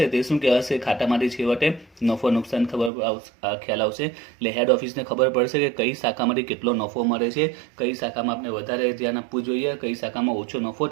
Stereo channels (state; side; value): drops out; left; at 2.9 s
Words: તે શું કહેવાશે? ખાતામાંથી છેવટે નફો નુકસાન ખ્યાલ આવશે. એટલે હેડ ઓફિસને ખબર પડશે કે કઈ શાખામાંથી કેટલો નફો મળે છે, કઈ શાખામાં આપણે વધારે ધ્યાન આપવું જોઈએ, કઈ શાખામાં ઓછો નફો